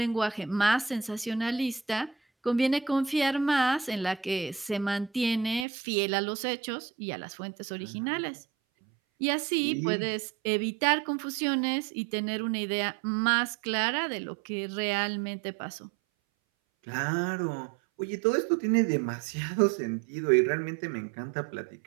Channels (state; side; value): drops out; left; at 5.7 s